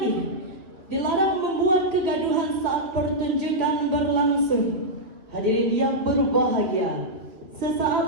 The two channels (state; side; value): late; left; 2.6 ms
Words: dilarang membuat kegaduhan saat pertunjukan berlangsung. Hadirin yang berbahagia,